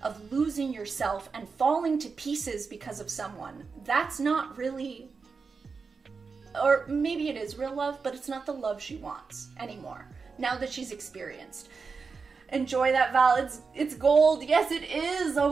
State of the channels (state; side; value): quieter; left; 5.0 dB